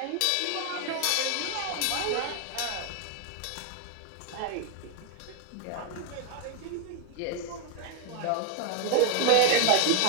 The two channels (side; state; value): both; different; correlation 0.01